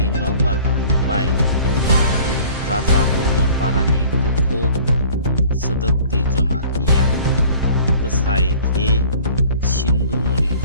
nogbar phainabai Raja Kodor Parani Bukuk Sedekti Zomatia Besai Ke Sindumuni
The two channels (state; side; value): inverted; both; correlation -0.49